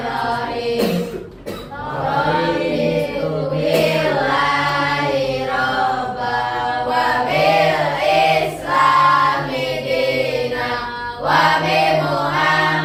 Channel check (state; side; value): identical; both; correlation 1.00